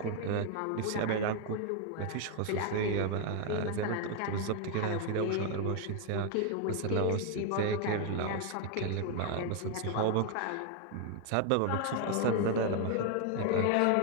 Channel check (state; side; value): different; both; correlation 0.01